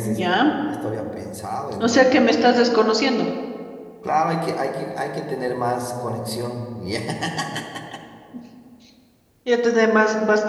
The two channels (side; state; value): both; identical; correlation 1.00